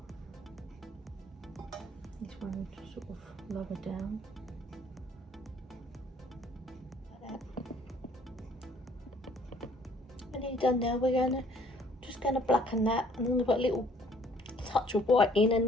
This one will just sort of lower down. Like that. And nearly done now. We're just going to blacken that, and then we've got a little touch of white in,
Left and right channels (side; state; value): both; normal; correlation 0.58